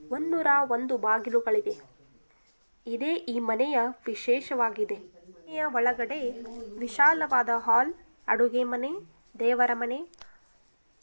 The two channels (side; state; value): both; inverted; correlation -1.00